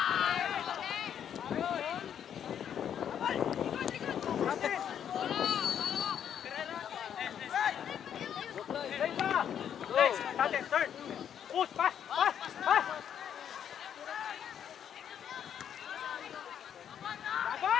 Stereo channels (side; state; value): right; quieter; 9.0 dB